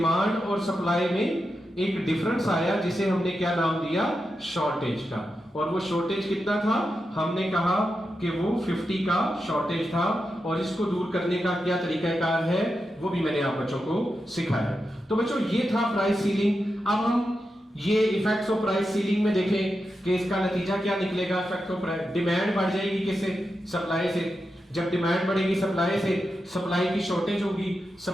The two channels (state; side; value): normal; both; correlation 0.88